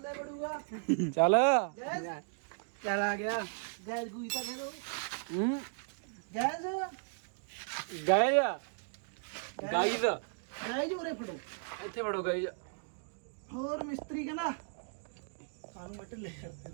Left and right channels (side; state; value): left; silent; digital silence